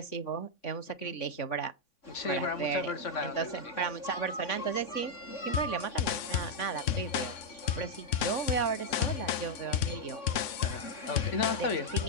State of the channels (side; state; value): right; late; 3.5 ms